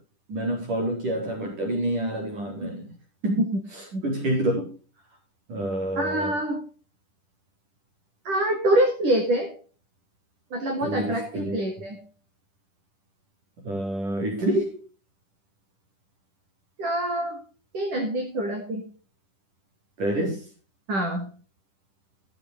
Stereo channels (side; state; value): left; late; 10 ms